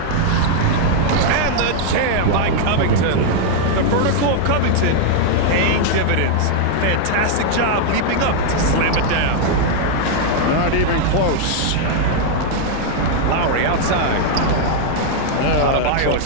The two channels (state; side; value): different; both; correlation 0.00